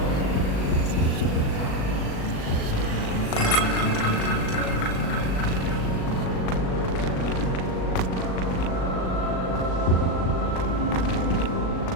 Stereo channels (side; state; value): right; late; 38 ms